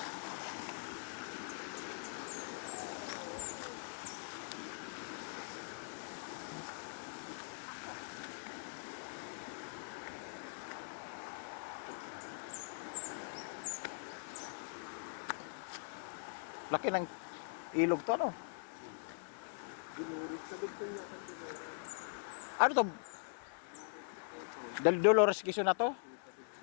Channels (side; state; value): right; silent; digital silence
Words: Laki ng ilog to, no? Dinurit sa dugtong niya. Ano to? Dolores Quezon na to?